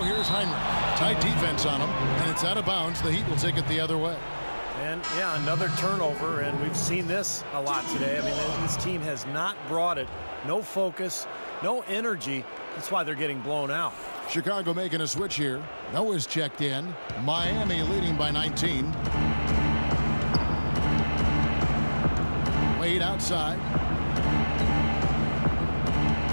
here's Heinrich. Tight defense on him, and it's out of bounds. The Heat will take it the other way. And, yeah, another turnover, and we've seen this a lot today. I mean, this team has not brought it. No focus, no energy. That's why they're getting blown out. Chicago making a switch here. Noah's checked in. Miami leading by 19. Wade outside.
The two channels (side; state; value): both; inverted; correlation -1.00